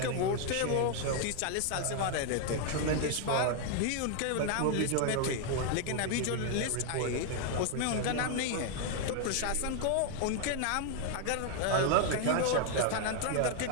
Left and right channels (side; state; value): both; different; correlation 0.00